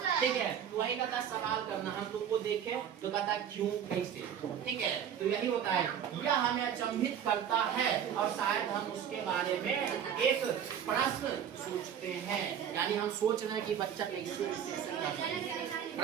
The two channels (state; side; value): quieter; left; 8.7 dB